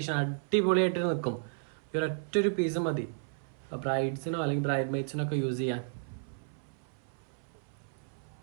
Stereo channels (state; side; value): silent; left; 56 dB below the other